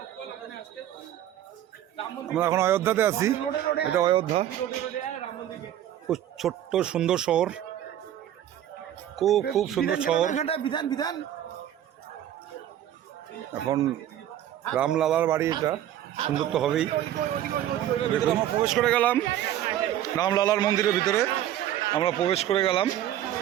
আমরা এখন অযোধ্যাতে আছি, এটা অযোধ্যা। খুব ছোট্ট সুন্দর শহর, খুব খুব সুন্দর শহর। বিধান এখন রামলালার বাড়ি, এটা সুন্দর তো হবেই। দেখুন আমরা প্রবেশ করে গেলাম রামলালার মন্দিরের ভিতরে, আমরা প্রবেশ করে গেলাম।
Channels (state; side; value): quieter; left; 11.8 dB